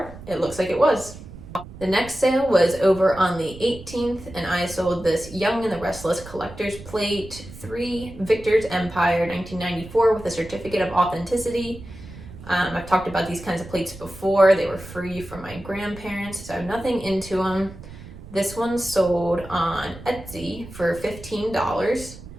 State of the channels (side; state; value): right; noise; rumble, 15 dB below the sound